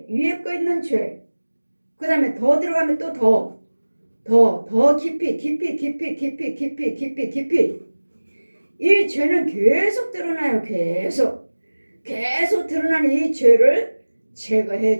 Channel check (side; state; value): both; inverted; correlation -1.00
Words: 거 있는 죄, 그 다음에 더 들어가면 또 더 깊이 이 죄는 계속 드러나요. 계속 드러나는 이 죄를 제거해